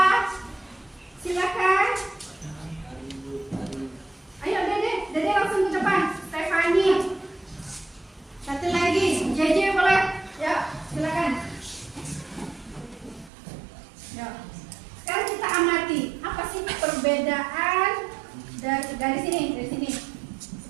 Silakan. Ayo Dede langsung ke depan. Stefani. 1 lagi, JJ boleh? Ya, silakan. Ya. Sekarang kita amati apa sih perbedaan dari sini,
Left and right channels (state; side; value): drops out; left; at 13.3 s